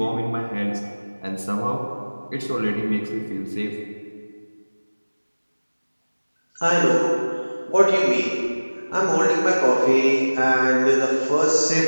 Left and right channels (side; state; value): both; inverted; correlation -1.00